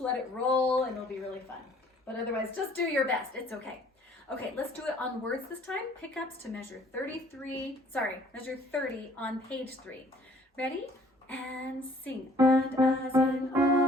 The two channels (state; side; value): normal; both; correlation 0.57